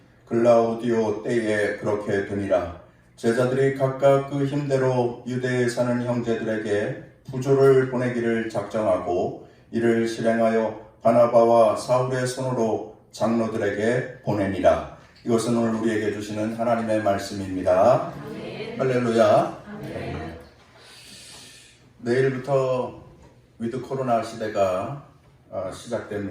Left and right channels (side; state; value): both; identical; correlation 1.00